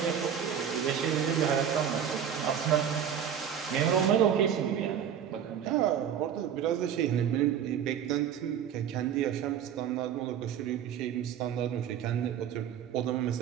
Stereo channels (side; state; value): left; quieter; 8.9 dB